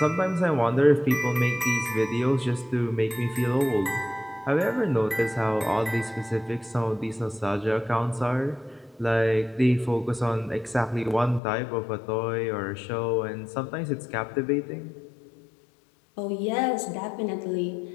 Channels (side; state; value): right; drops out; at 11.4 s